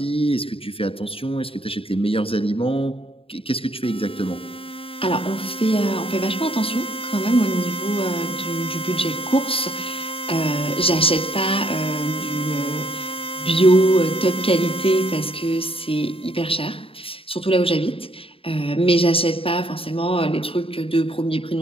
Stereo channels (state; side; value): late; right; 0.27 ms